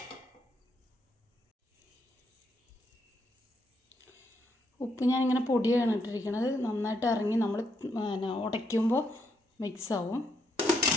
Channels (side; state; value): both; normal; correlation 0.77